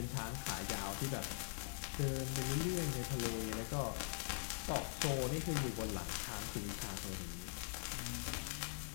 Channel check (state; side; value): silent; right; digital silence